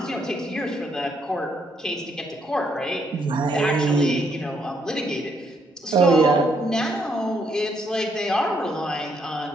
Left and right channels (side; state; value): both; normal; correlation 0.73